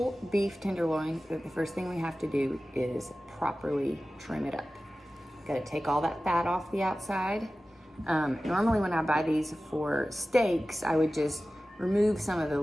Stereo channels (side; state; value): both; normal; correlation 0.96